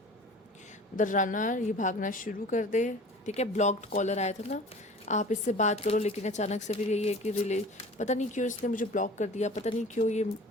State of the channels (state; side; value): normal; both; correlation 0.42